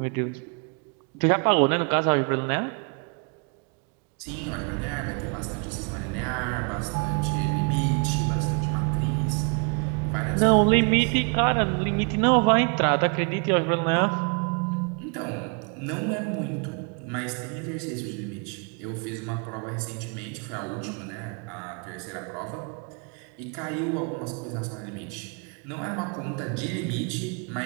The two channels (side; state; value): left; quieter; 36.1 dB